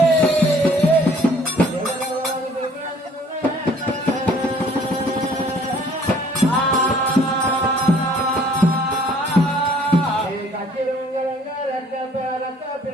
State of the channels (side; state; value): both; normal; correlation 0.57